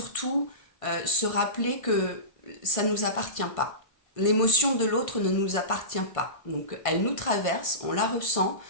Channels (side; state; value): right; late; 1.6 ms